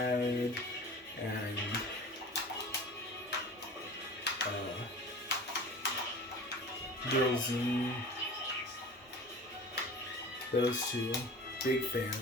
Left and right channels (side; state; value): both; normal; correlation 0.38